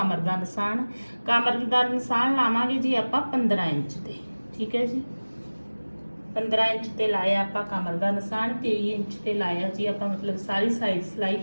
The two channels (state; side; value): inverted; both; correlation -1.00